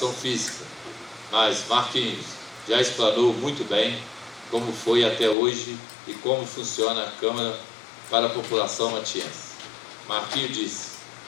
física, mas Marquinhos já explanou muito bem como foi até hoje e como funciona a Câmara para a população matiense. Marquinhos disse:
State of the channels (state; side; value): drops out; right; at 5.4 s